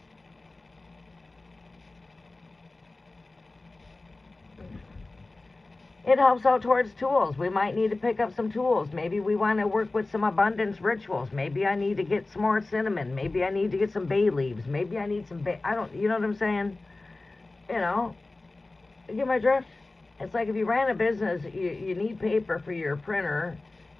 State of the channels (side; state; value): right; quieter; 3.2 dB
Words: It helps out towards tools. We might need to pick up some tools. Maybe we want to work with some abundance rituals. Maybe I need to get some more cinnamon. Maybe I need to get some bay leaves. Maybe I need some you know what I'm saying? You get my drift? It's like if you ran a business, you need paper for your printer.